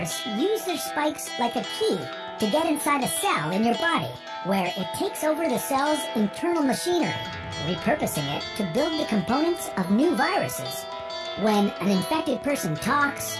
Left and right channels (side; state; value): both; identical; correlation 1.00